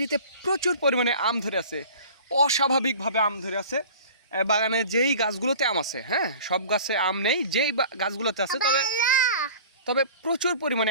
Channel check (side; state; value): both; inverted; correlation -0.43